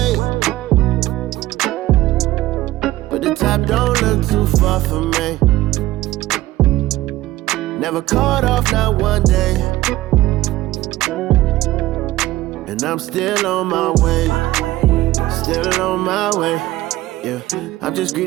But the top don't look too far for me. Never caught off, not one day. And I'm still on my way. Still on my way. Yeah, I'm just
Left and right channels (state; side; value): quieter; left; 16.6 dB